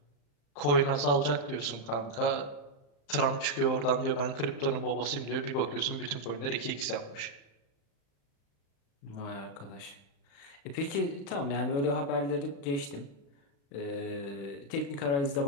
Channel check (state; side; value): late; right; 36 ms